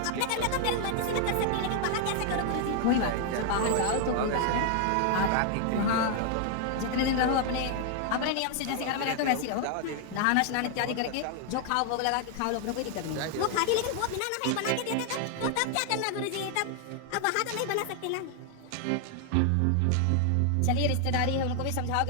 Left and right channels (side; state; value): both; different; correlation 0.00